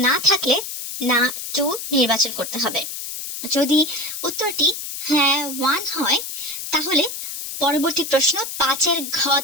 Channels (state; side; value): noise; left; hiss, 7 dB below the sound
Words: না থাকলে না 2 নির্বাচন করতে হবে। যদি উত্তরটি হ্যাঁ 1 হয় তাহলে পরবর্তী প্রশ্ন 5-এর